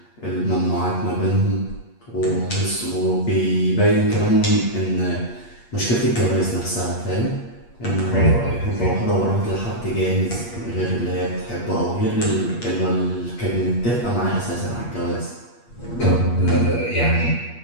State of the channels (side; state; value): right; late; 8.5 ms